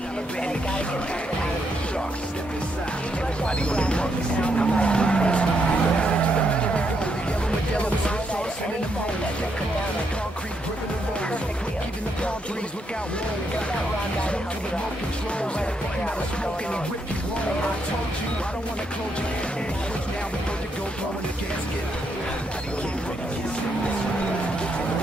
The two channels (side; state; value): both; normal; correlation 0.77